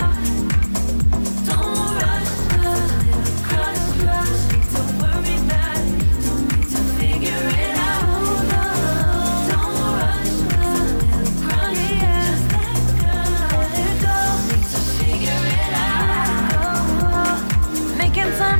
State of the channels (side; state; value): both; inverted; correlation -1.00